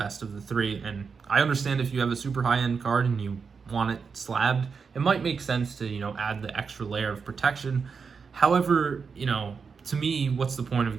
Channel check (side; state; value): left; quieter; 5.6 dB